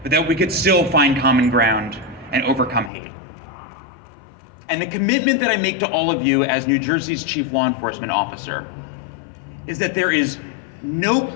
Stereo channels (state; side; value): drops out; right; at 2.9 s